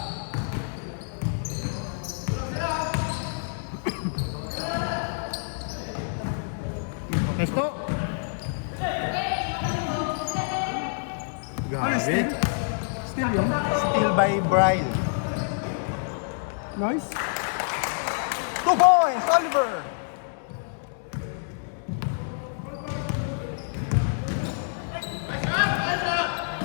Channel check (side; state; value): right; silent; digital silence